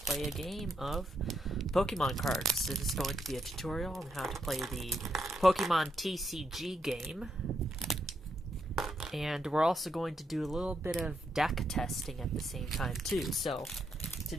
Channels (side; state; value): both; normal; correlation 0.80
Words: a game of Pokemon cards. This is going to be a tutorial on how to play the Pokemon TCG game. And we're also going to do a little bit of deck testing at the same time too. So